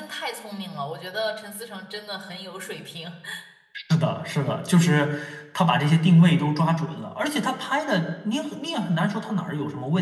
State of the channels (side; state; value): both; identical; correlation 1.00